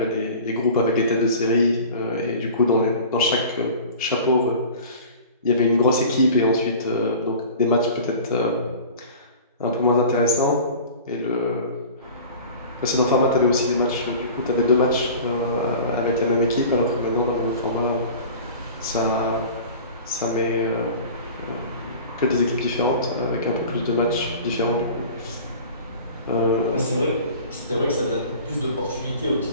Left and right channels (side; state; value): both; inverted; correlation -0.40